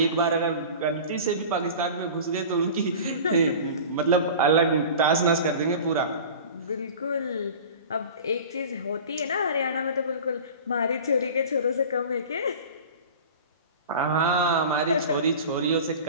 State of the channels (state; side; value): inverted; both; correlation -0.37